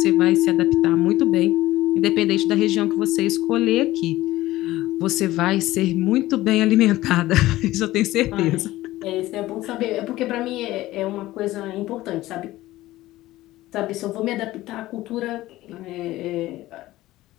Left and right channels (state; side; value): quieter; right; 16.7 dB